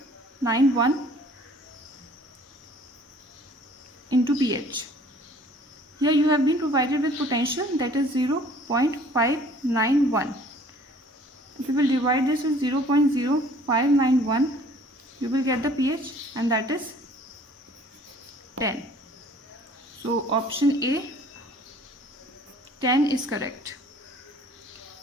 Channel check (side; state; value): both; normal; correlation 0.53